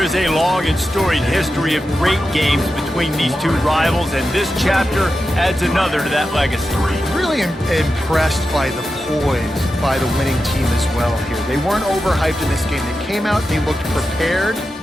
a long and storied history of great games between these two rivals, and this chapter adds another to that legacy. Really impressed by the poise by the winning team as well here. They weren't overhyped in this game. They came out, they looked prepared,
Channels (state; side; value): normal; both; correlation 0.91